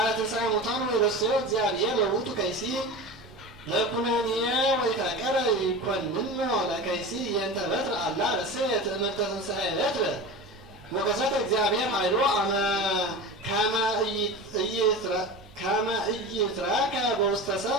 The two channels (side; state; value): both; normal; correlation 0.30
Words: ትንሣኤ ሙታን ወይረሰዮ እግዚአብሔር ለውቱ ከይሲ ለኩነኔ ወይታቀረ ይኮንኖ ለከይሲ የንተ በትር አላ ረሰየ ትእምርተ ትንሣኤ በትር ወከሰተ እግዚአብሔር ኃይሎ ከመ ኢይትረከ በውስተ